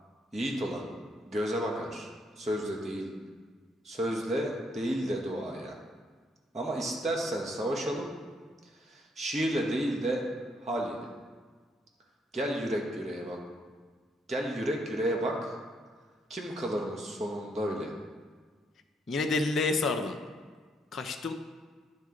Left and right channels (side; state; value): both; normal; correlation 0.72